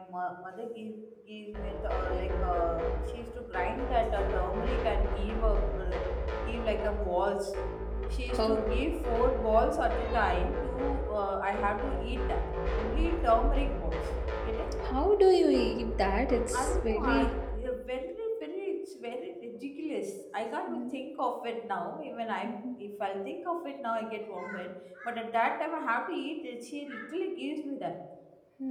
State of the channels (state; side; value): identical; both; correlation 1.00